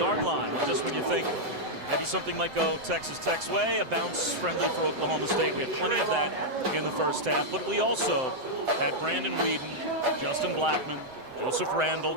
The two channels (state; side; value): late; left; 7.7 ms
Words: line. Well, just when you think maybe something might go Texas Tech's way, a bounce friendly for Oklahoma State. We had plenty of that in the first half, but we also had Brandon Weeden, Justin Blackmon, Joseph Randall